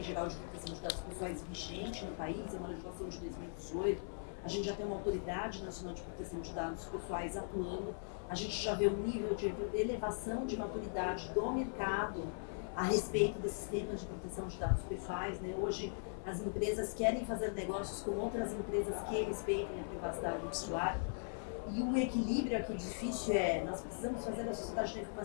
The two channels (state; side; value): silent; right; 51 dB below the other